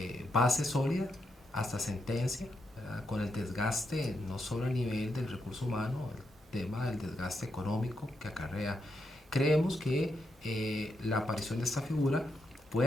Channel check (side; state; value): both; normal; correlation 0.82